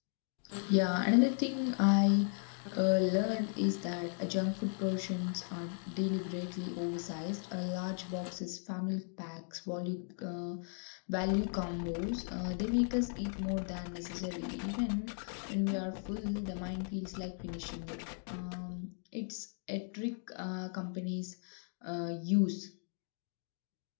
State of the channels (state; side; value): silent; right; 54 dB below the other